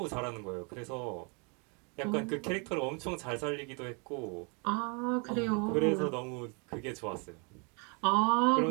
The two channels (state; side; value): quieter; left; 33.9 dB